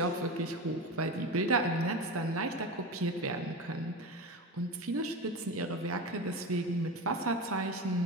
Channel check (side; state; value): both; normal; correlation 0.24